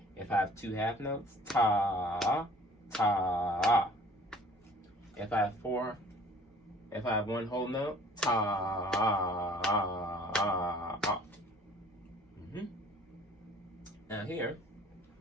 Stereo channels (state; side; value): normal; both; correlation 0.52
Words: If I have 2 1/2 notes, ta, ta. If I have 1 whole note, ta. Now here,